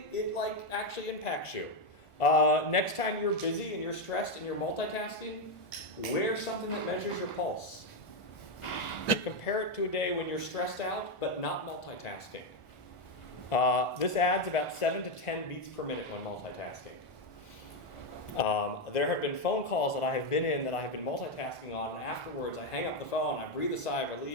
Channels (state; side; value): late; right; 1.4 ms